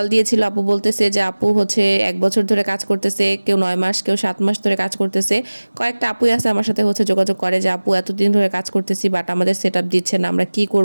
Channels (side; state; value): both; inverted; correlation -1.00